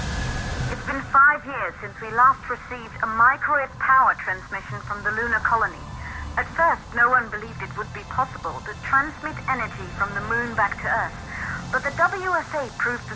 It's been 5 years since we last received a microwave power transmission from the lunar colony. At first, no one believed it would be possible to transmit energy from the moon back to Earth, but the WSA proved the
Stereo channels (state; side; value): identical; both; correlation 1.00